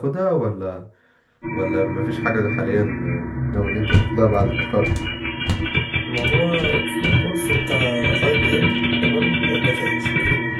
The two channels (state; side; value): identical; both; correlation 1.00